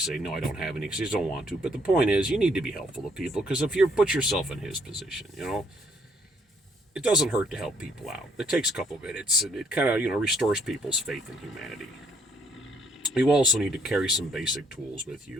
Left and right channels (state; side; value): normal; both; correlation 0.68